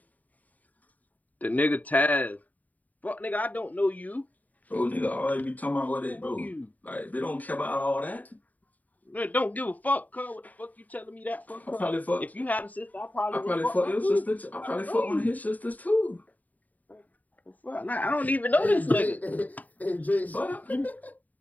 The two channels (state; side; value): late; right; 0.077 ms